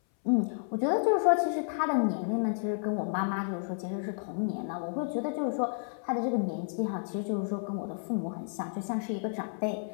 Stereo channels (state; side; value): silent; right; 57 dB below the other